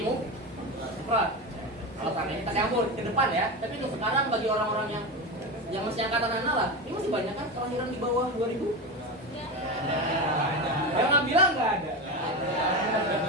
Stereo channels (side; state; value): both; normal; correlation 0.20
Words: mufrad. Kalau seandainya kita campur ke depan ya, tapi untuk sekarang bagi orang-orang yang masih angkatan anak lah, ini masih banyak kan kelahiran di bawah 2000. Yang nggak bilang nggak ada.